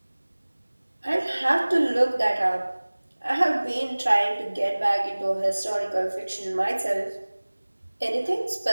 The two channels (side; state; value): both; inverted; correlation -1.00